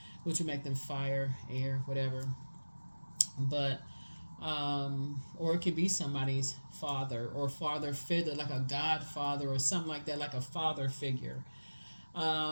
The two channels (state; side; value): inverted; both; correlation -1.00